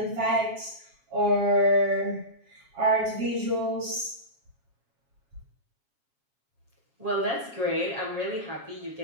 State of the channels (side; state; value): left; late; 7.3 ms